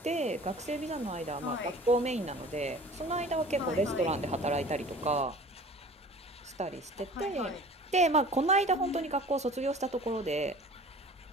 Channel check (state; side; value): normal; both; correlation 0.44